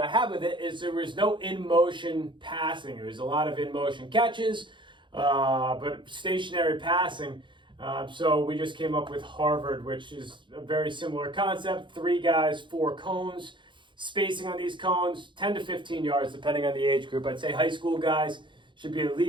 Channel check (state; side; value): late; left; 0.23 ms